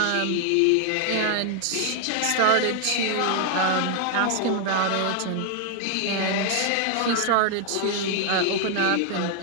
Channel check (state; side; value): different; both; correlation 0.00